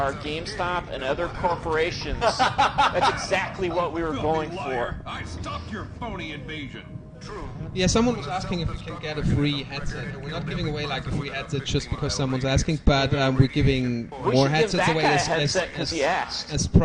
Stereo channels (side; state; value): both; identical; correlation 1.00